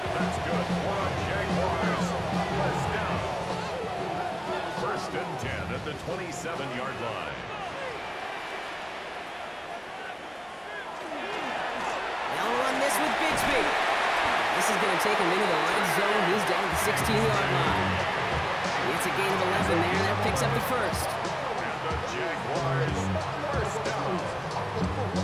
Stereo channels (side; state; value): both; identical; correlation 1.00